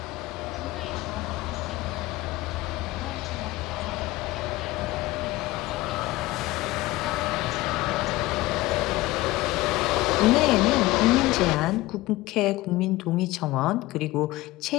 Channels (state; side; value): quieter; right; 18.9 dB